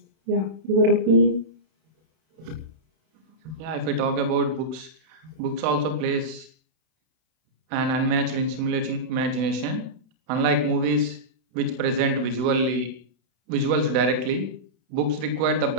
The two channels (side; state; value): left; late; 32 ms